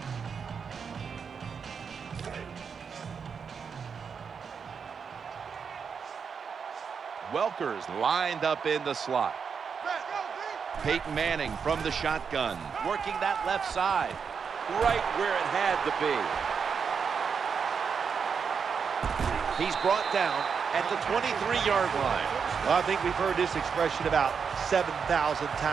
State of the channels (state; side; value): quieter; left; 6.2 dB